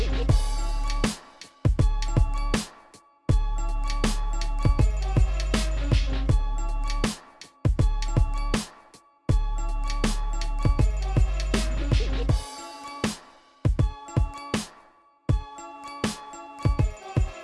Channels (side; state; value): both; identical; correlation 1.00